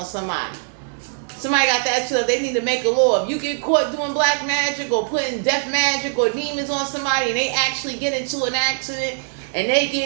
somebody. Somebody got that shit up. They need to make a law. If you get caught doing black magic or putting death magic or demons on somebody and they actually get into an accident and they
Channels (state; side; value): silent; left; digital silence